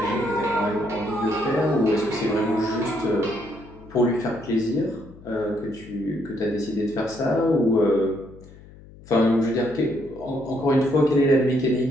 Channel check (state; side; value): noise; left; hum, 21 dB below the sound